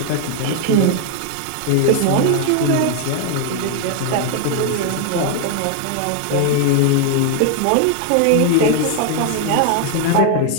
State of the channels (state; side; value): different; both; correlation 0.01